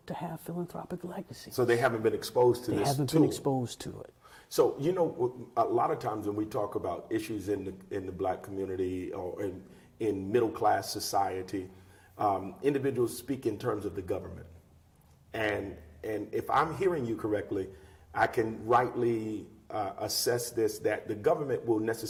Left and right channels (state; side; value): identical; both; correlation 1.00